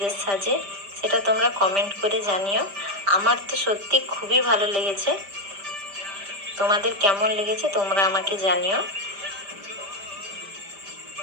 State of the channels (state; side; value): late; left; 5.0 ms